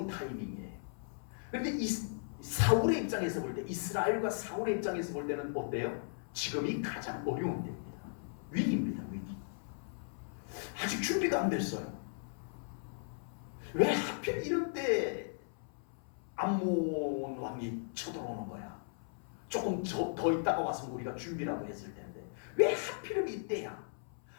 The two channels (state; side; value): silent; right; 53 dB below the other